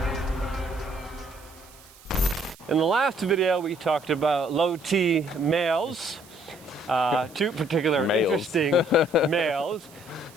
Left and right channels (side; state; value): right; noise; hiss, 24 dB below the sound